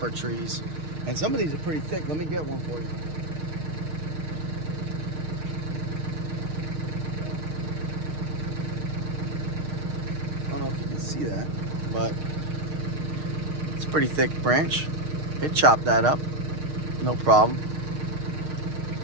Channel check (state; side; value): late; left; 6.5 ms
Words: trees. And some of these are pretty thick. Let me get one for you. I don't know if you can see that, but it's a pretty thick branch. It chopped that up, no problem.